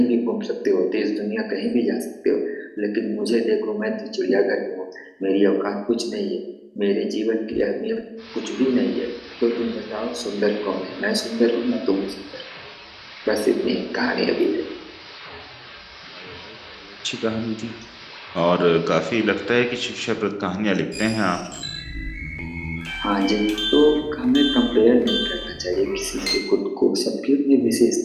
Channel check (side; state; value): both; identical; correlation 1.00